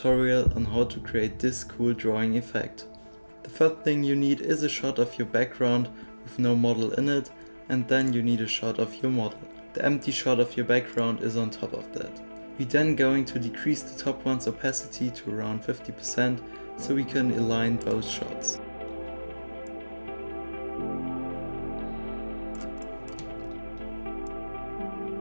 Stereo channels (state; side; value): inverted; both; correlation -1.00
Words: on how to create this cool drawing effect. The first thing you need is a shot of your background with no model in it, and then you need a shot of your model. The empty shot of your background is on top of that. We're then going to decrease the top one's opacity to around 50% so we can align both shots.